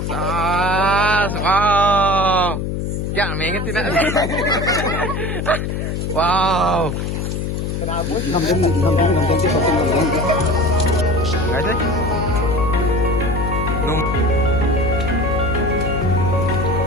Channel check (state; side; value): noise; left; hum, 2 dB below the sound